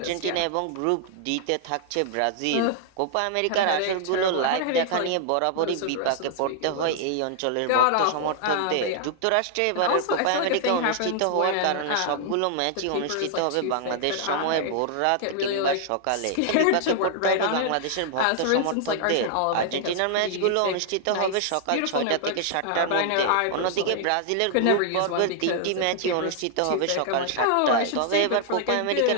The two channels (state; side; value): different; both; correlation 0.00